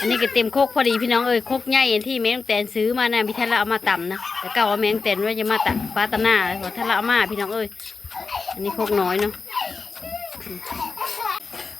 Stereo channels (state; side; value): quieter; right; 4.5 dB